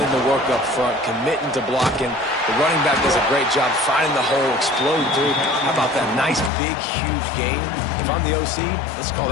in the work up front, committing to blocking. The running back does a great job finding the hole, explode through. How about that nice, big, huge gain? If I'm the OC, let's call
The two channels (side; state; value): right; drops out; at 6.5 s